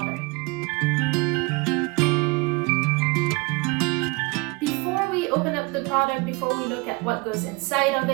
Before we open up the product, before we look at what goes inside of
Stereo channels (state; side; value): quieter; left; 26.8 dB